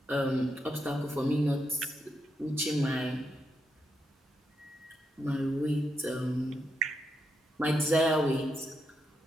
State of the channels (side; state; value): both; normal; correlation 0.82